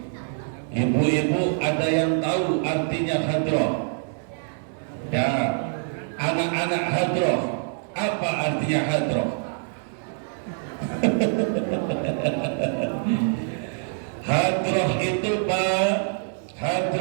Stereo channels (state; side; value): silent; left; 62 dB below the other